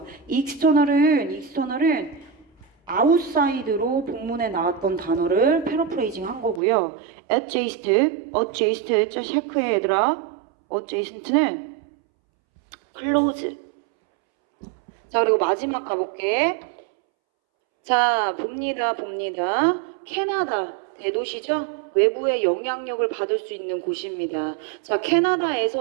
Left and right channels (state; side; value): drops out; left; at 6.6 s